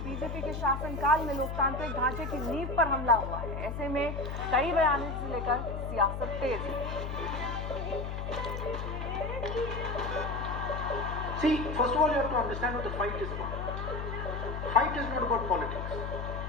बीजेपी के शासनकाल में लोकतांत्रिक ढांचे की नींव पर हमला हुआ है। ऐसे में कई बयानों से लेकर सियासत तेज है। See, first of all, you have to understand what the fight is about. Fight is not about politics.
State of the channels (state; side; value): noise; left; hum, 5 dB below the sound